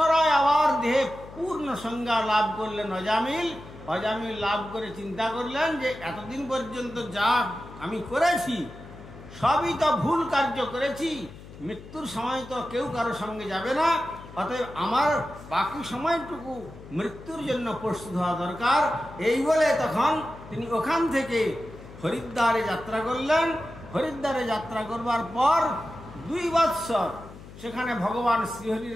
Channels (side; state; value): left; noise; hum, 17 dB below the sound